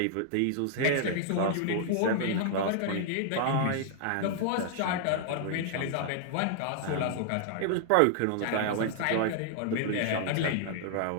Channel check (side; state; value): both; different; correlation -0.01